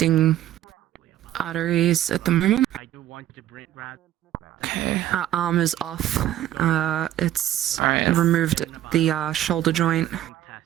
arteries at the moment. I do want to bring rat. Okay. Arm is off. It's Alright. removed the shoulder joint. Test.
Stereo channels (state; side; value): quieter; left; 12.6 dB